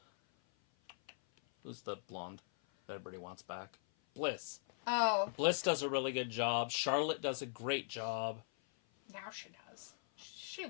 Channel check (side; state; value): right; silent; 51 dB below the other